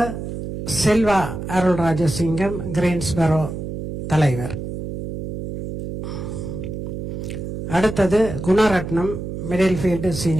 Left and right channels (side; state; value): right; noise; hum, 6 dB below the sound